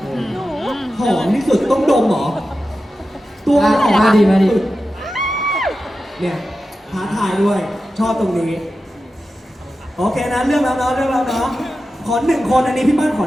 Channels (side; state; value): both; normal; correlation 0.92